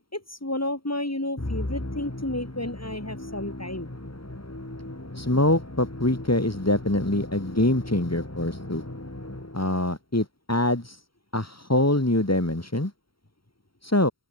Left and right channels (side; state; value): right; late; 0.74 ms